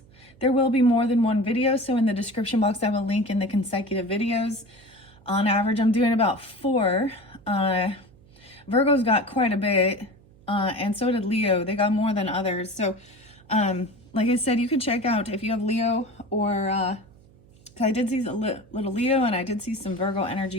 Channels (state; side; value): noise; right; hum, 27 dB below the sound